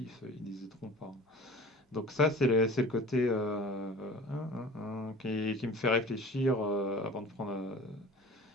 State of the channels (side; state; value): both; normal; correlation 0.40